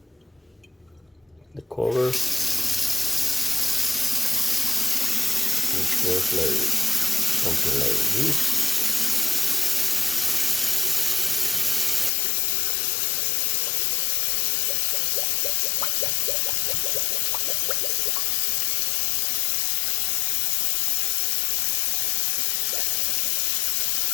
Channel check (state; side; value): drops out; right; at 12.1 s